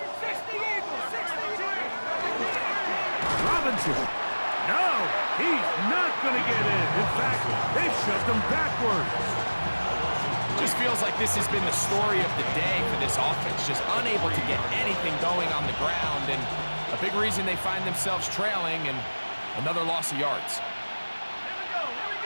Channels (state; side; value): inverted; both; correlation -1.00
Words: Robinson. No, he's not going to get in. In fact, they've shoved him backwards. Just feels like this has been the story of the day for this offense, just unable to get anything going on the ground, and a big reason they find themselves trailing and another loss of yards.